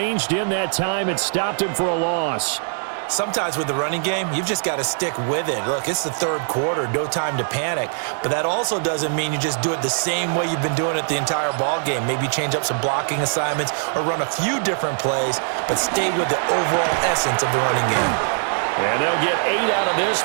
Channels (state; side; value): silent; left; 64 dB below the other